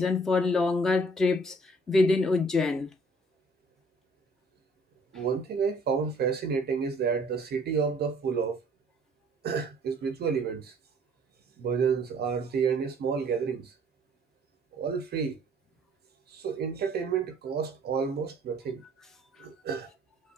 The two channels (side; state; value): both; normal; correlation 0.57